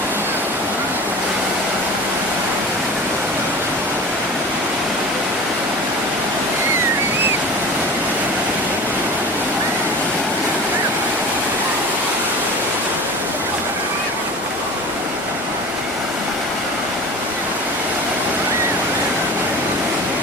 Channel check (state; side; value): normal; both; correlation 0.36